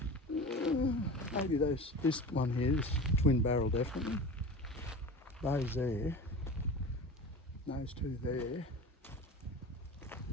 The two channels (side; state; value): both; normal; correlation 0.34